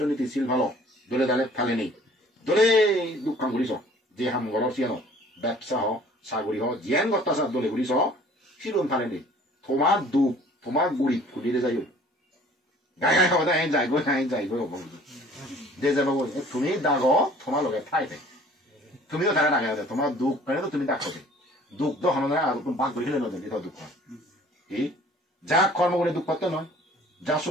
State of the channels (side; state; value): both; normal; correlation 0.52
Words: ছিল ভালো দলে দালে ফালে নেই দলে দুঃখান ঘুরিছ যে হাম ঘর সিয়ানো ব্যবসা হ সাগরি হ জিয়ান গত্তা দলে ঘুরিছ সিলুন ফালে নেই তোমার দুঃখ তোমার গুড়ি ফুলিরে যাই গাই গাই খাওয়া যায় যাইব যে যাব তুমি দাগ তোমার লগে ঠাই থাই তুমিও তারা ডাঙা আছে তোমার দুঃখ কারণে তো তুমি ডাকতে দুঃখ তো হন আর তুমি ভাগ করে খেলে নদী দুঃখ এই যা কর্ম করে দুঃখ করতে নয় যা